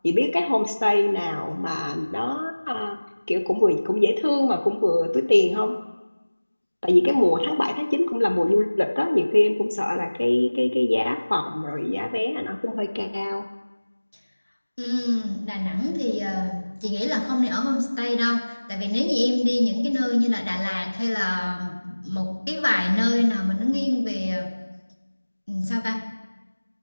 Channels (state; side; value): inverted; both; correlation -1.00